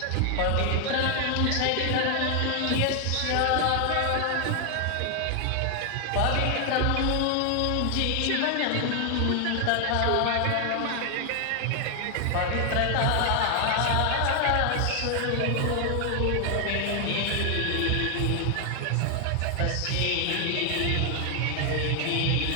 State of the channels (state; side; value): different; both; correlation 0.00